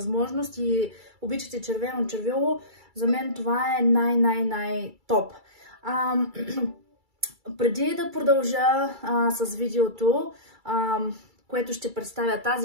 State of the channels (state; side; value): late; left; 2.3 ms